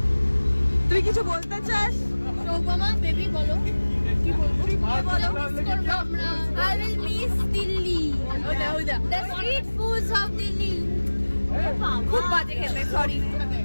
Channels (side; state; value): both; inverted; correlation -1.00